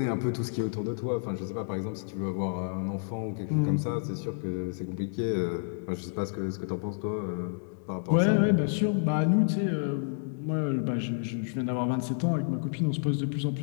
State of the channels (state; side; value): silent; right; digital silence